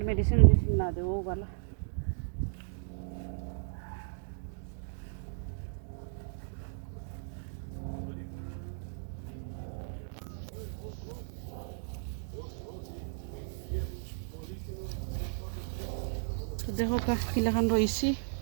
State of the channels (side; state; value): left; silent; digital silence